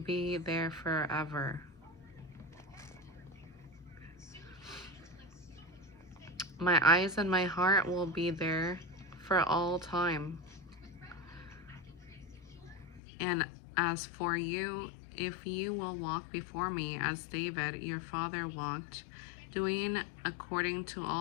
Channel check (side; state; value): right; drops out; at 13.0 s